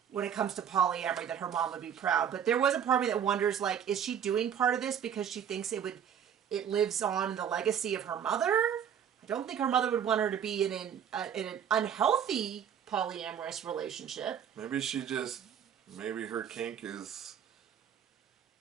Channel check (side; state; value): left; quieter; 8.6 dB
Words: when it comes to polyamory, that her mom would be proud. But there was a part of me that wonders, like, is she doing part of this because she thinks it lives on in the legacy of her mother? I don't think her mother would want her to be in an unhealthy polyamorous relationship. Maybe her kink is